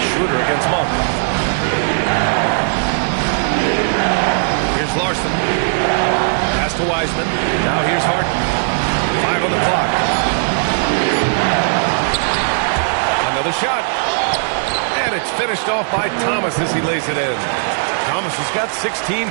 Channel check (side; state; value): left; silent; digital silence